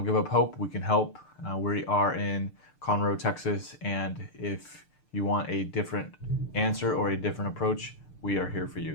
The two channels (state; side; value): late; right; 6.7 ms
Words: give up hope. We can help. We are in Conroe, Texas, and if you want a different answer or a different approach, we are here for you.